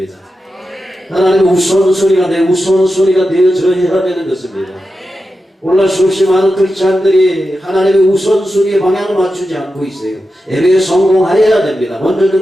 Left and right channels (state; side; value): normal; both; correlation 0.90